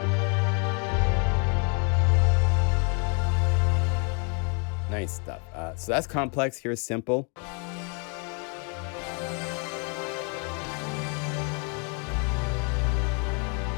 Nice stuff. So that's complex. Here's simple.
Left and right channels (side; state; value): right; quieter; 35.5 dB